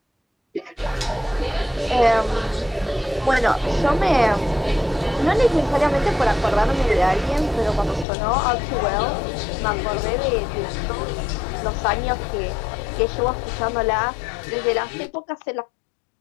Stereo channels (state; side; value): drops out; right; at 8.1 s